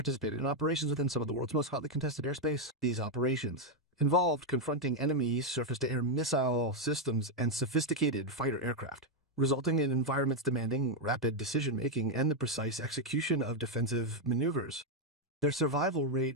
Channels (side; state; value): both; normal; correlation 0.02